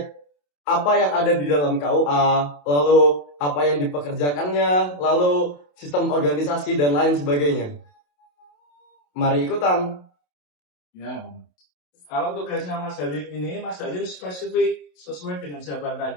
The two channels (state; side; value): late; right; 27 ms